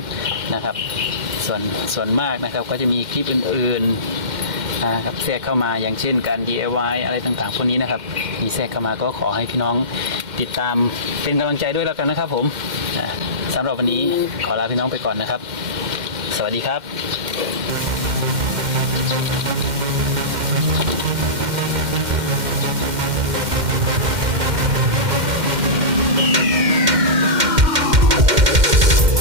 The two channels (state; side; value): late; left; 2.1 ms